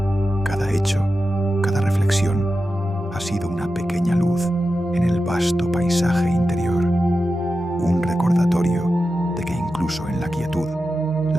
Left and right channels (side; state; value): both; normal; correlation 0.91